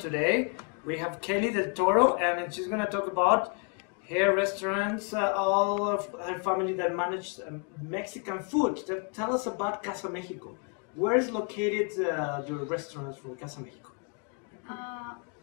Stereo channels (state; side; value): quieter; right; 38.6 dB